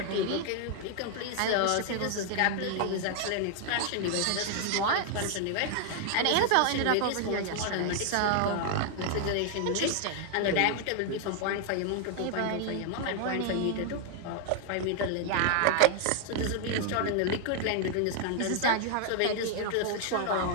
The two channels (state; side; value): different; both; correlation 0.00